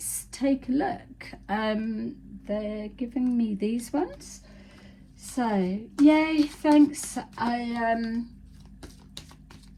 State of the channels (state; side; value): identical; both; correlation 1.00